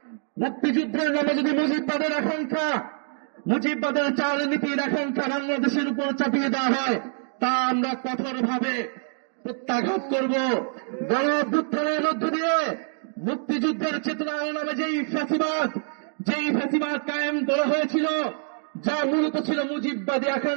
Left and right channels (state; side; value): silent; left; 61 dB below the other